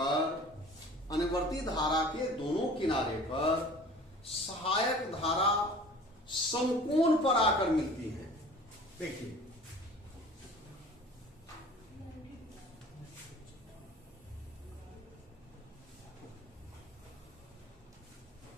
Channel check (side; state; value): both; normal; correlation 0.45